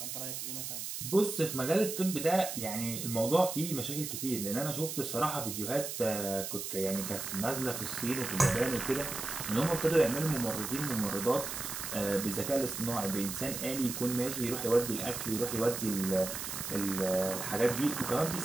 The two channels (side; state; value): right; noise; hiss, 5 dB below the sound